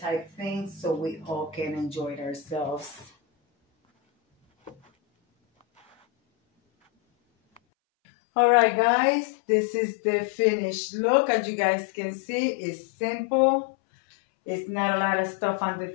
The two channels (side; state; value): right; drops out; at 7.6 s